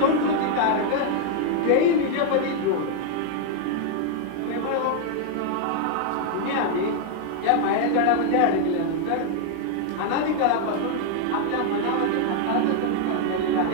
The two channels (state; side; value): different; both; correlation 0.00